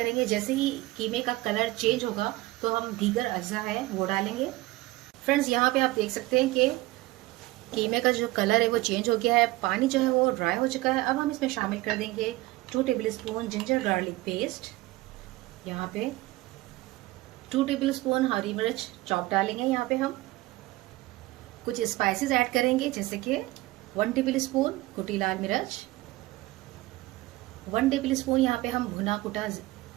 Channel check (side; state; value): left; quieter; 19.2 dB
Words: जैसे ही कीमे का कलर चेंज होगा तो हम दीगर अज्जा है वो डालेंगे। फ्रेंड्स, यहाँ पे आप देख सकते हैं कि कीमे का जो कलर है वो चेंज हो गया है। पानी जो है वो ड्राई हो चुका है। अब हम इसमें शामिल कर देंगे 2 table spoon ginger garlic paste. यहाँ पे 2 टेबल स्पून हरी मिर्च चॉप डालेंगे। यहाँ पे हम कुछ स्पाइसेस ऐड करेंगे, जैसे कि 1 टेबल स्पून कुटी लाल मिर्च, 1 टेबल स्पून यहाँ पे हम भुना कुटा